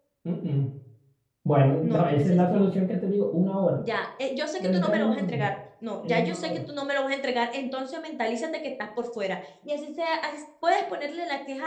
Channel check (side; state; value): both; identical; correlation 1.00